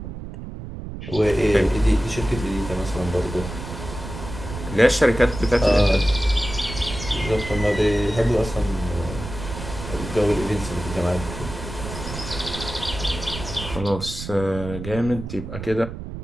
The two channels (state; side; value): noise; right; rumble, 9 dB below the sound